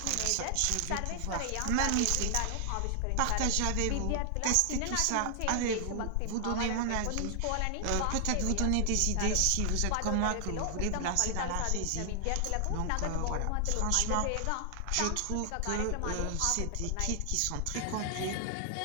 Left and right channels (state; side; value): different; both; correlation 0.00